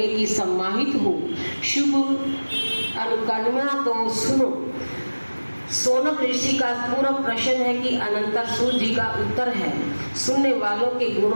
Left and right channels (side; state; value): both; inverted; correlation -1.00